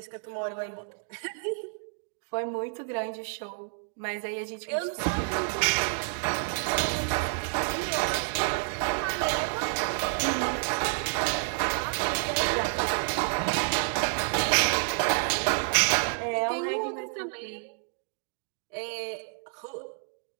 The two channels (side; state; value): left; silent; digital silence